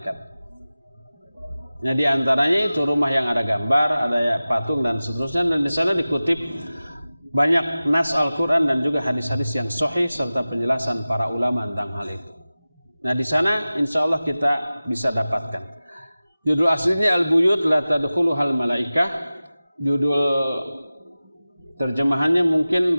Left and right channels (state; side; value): inverted; both; correlation -0.96